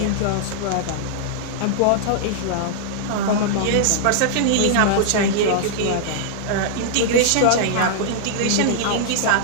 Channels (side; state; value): both; different; correlation -0.01